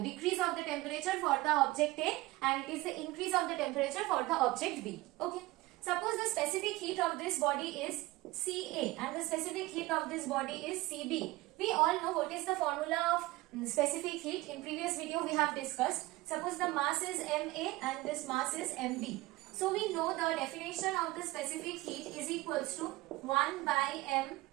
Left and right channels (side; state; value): left; quieter; 19.5 dB